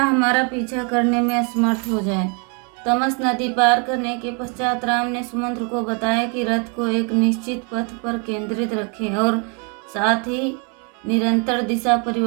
पीछा करने में असमर्थ हो जाए। तमस नदी पार करने के पश्चात राम ने सुमंत्र को बताया कि रथ को एक निश्चित पथ पर केंद्रित रखें और साथ ही निरंतर दिशा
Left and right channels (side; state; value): left; quieter; 36.0 dB